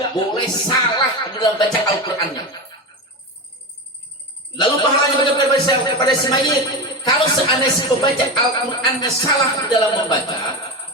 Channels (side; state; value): both; normal; correlation 0.20